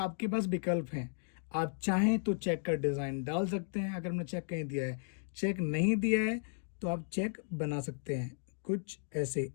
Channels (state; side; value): silent; right; digital silence